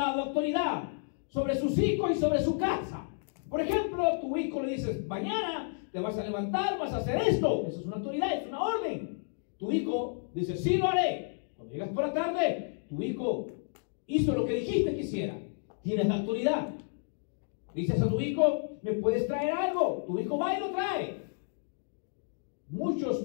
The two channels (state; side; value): silent; right; digital silence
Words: autoridad sobre sus hijos y sobre su casa. Por ejemplo, tu hijo le dices, mañana te vas a levantar, vas a hacer esto. Eso es una autoridad, es una orden. Tu hijo dice, sí lo haré. Cuando llegas por la tarde, tu hijo hizo lo que dijiste que hiciera. Tienes la autoridad. Dices a tu hijo, ¿me puedes traer algo? Tu hijo va y lo trae.